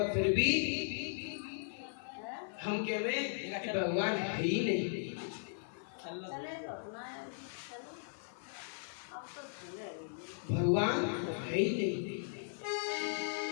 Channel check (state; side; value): silent; right; 53 dB below the other